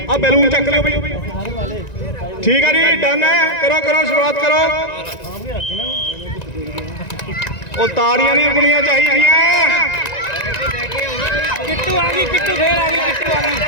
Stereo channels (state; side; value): late; right; 1.9 ms